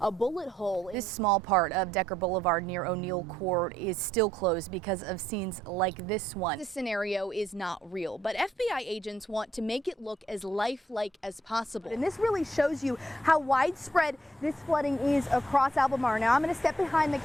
bullet hole. This small part of Decker Boulevard near O'Neill Court is still closed because of scenes like this one. This scenario is not real, but FBI agents want to make it look as lifelike as possible. And this really shows you how widespread this flooding is across Albemarle. Now I'm going to step behind the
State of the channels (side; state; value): both; normal; correlation 0.72